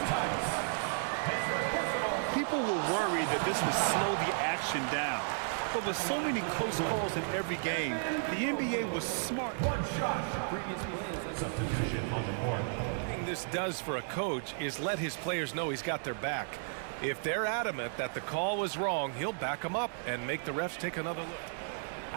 Tice. His first personal, people were worried that this would slow the action down. But with so many close calls in every game, the NBA was smart. One shot. Substitution on the court. The thing this does for a coach is let his players know he's got their back. If they're adamant that the call was wrong, he'll back them up and make the refs take another look.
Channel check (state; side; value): silent; left; digital silence